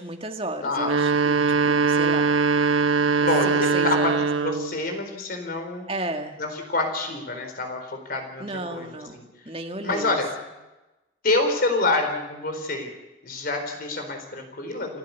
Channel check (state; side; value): normal; both; correlation 0.02